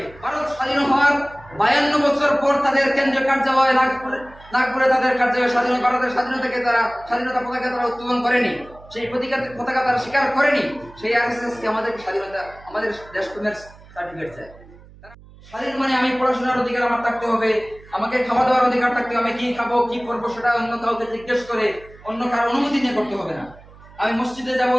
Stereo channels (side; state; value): right; noise; hum, 22 dB below the sound